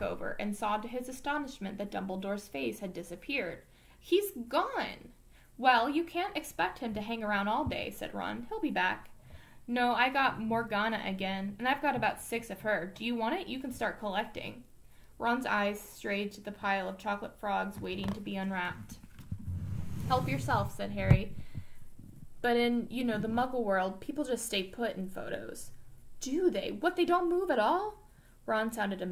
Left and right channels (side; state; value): both; identical; correlation 1.00